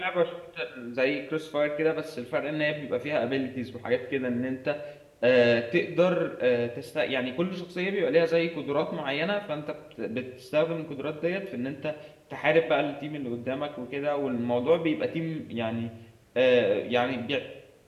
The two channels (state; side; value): identical; both; correlation 1.00